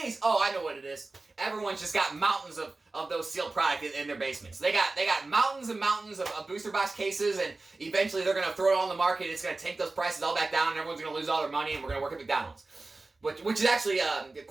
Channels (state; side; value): quieter; left; 3.3 dB